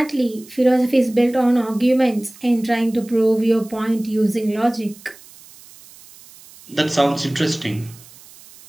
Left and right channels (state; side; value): noise; right; hiss, 22 dB below the sound